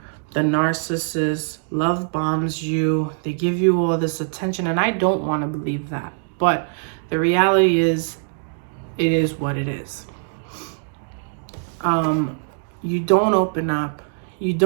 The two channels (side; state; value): left; silent; 64 dB below the other